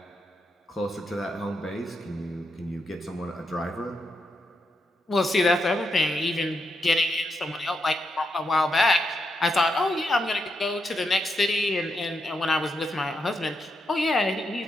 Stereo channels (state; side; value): normal; both; correlation 0.83